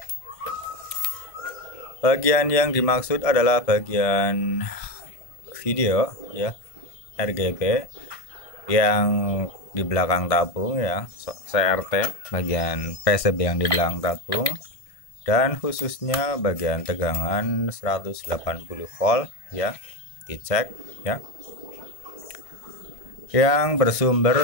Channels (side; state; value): right; late; 1.5 ms